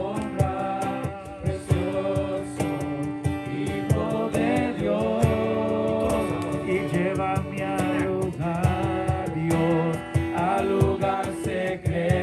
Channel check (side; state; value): both; identical; correlation 1.00